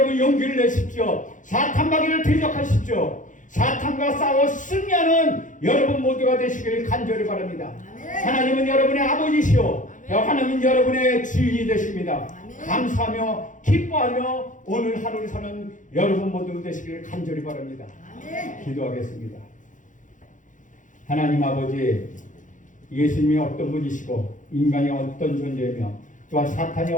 용기를 내십시오. 사탄 마귀를 대적하십시오. 사탄과 싸워 승리하는 여러분 모두가 되시기를 간절히 바랍니다. 하나님은 여러분의 아버지시오, 하나님은 여러분의 주인이 되십니다. 감사하며 기뻐하며 오늘 하루를 사는 여러분 모두 되시기를 간절히 바랍니다. 기도하겠습니다. 하나님 아버지, 예수님이 어떤 분이시고 인간이 어떤 존재이며 또한 사탄이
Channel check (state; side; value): late; right; 0.37 ms